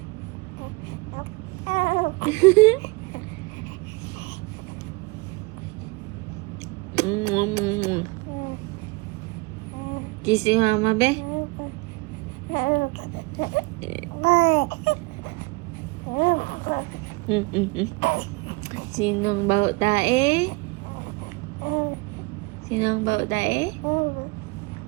Kiss si mama, be. Sinong baho tae? Sinong baho tae?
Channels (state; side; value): quieter; left; 25.6 dB